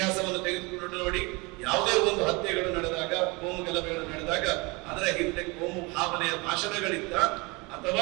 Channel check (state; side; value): quieter; left; 26.7 dB